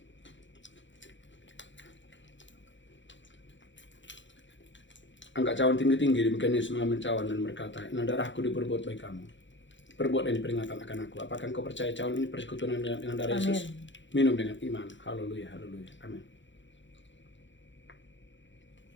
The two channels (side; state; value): right; late; 0.54 ms